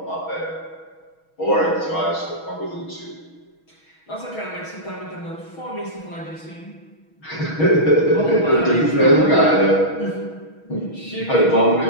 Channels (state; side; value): late; right; 6.3 ms